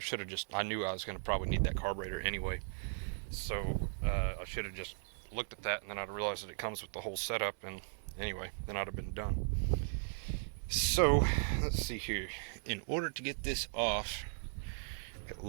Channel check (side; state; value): left; silent; 53 dB below the other